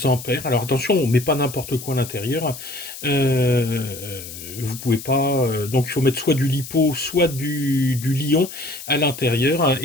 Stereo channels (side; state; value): left; noise; hiss, 12 dB below the sound